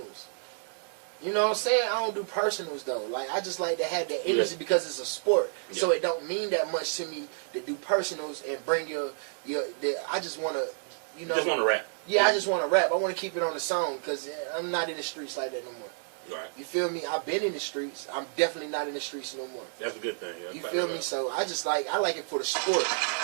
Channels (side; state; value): left; silent; 58 dB below the other